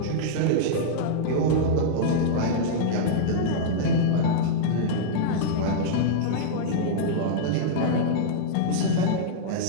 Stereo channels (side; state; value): both; different; correlation -0.02